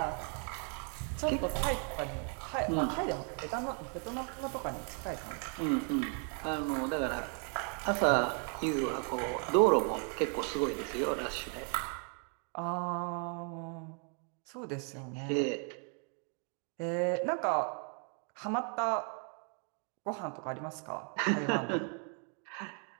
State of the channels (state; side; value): quieter; left; 39.8 dB